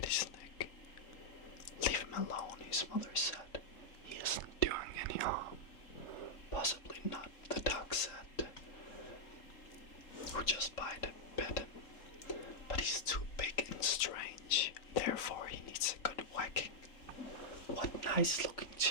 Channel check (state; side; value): late; right; 3.9 ms